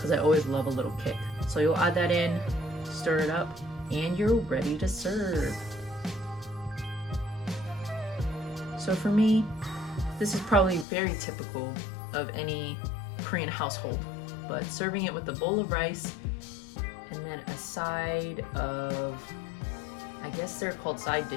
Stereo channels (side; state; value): right; drops out; at 10.9 s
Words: I always love a little kick. So you'll add that in, stir it up, and you're ready to serve. So for me, this is probably very typical of any Korean household, but serving it with a bowl of rice and then a side of, I guess they're called side